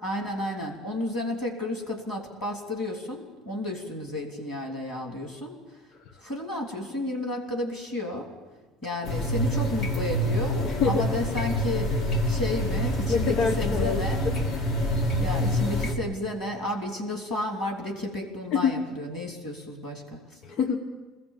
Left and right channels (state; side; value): normal; both; correlation 0.38